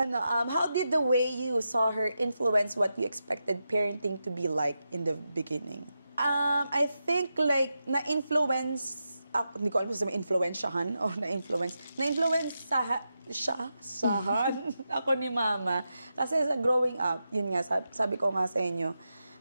did the way you saw her influence what you expected parenting to be like in the beginning? I think like na-influence hindi ko alam kung influensyahan o na-influence sahan ako ni mama. Kasi sa growing up, yun nga, sabi ko nga sa inyo,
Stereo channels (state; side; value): inverted; both; correlation -0.88